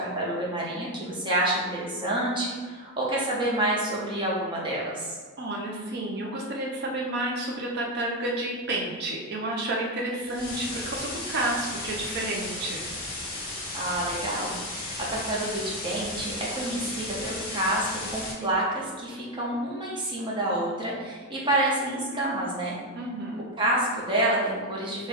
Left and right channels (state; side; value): normal; both; correlation 0.07